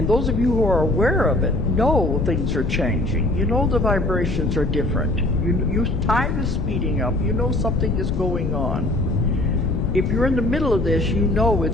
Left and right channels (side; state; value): left; noise; rumble, 1 dB below the sound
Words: those of you who are aware of it know things are changing. You know the vibrations are different. Time is speeding up. You know something is going on. If you're in the middle of this, you know